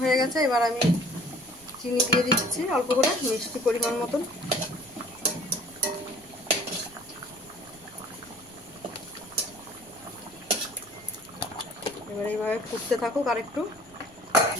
হয়ে গেছে, এবার আমি চিনি দিয়ে দিচ্ছি অল্প করে, মিষ্টি পরিমাণ মতন। এবার এইভাবে ফুটতে থাকুক আর একটু।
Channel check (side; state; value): left; noise; rumble, 26 dB below the sound